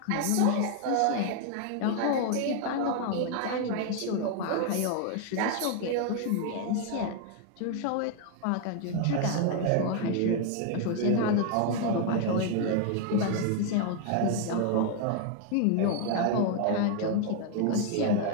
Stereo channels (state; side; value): different; both; correlation 0.00